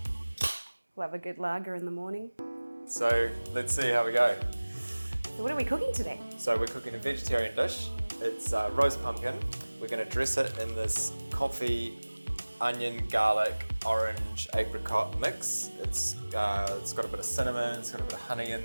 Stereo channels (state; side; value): inverted; both; correlation -1.00